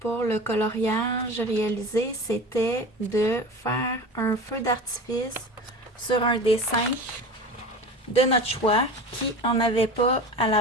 le coloriage réalisé, c'était de faire un feu d'artifice sur un dessin de notre choix qui n'en avait pas à la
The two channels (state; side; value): normal; both; correlation 0.33